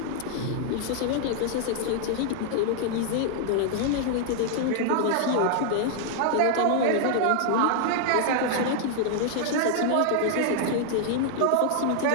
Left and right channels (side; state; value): both; different; correlation 0.00